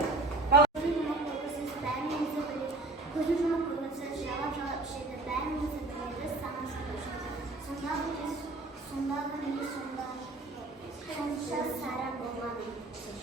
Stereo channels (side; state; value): left; quieter; 3.1 dB